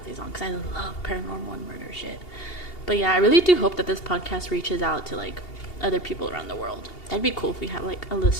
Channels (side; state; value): right; late; 2.8 ms